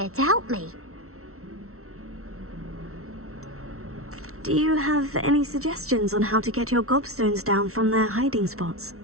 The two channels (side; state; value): left; late; 0.63 ms